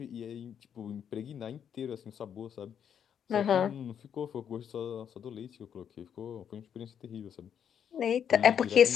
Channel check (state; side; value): quieter; right; 8.4 dB